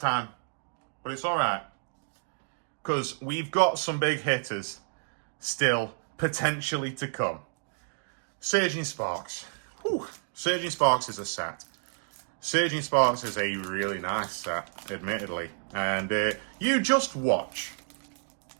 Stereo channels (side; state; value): left; silent; digital silence